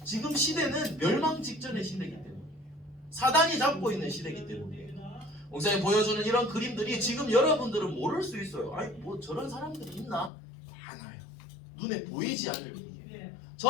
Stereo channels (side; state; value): right; drops out; at 10.3 s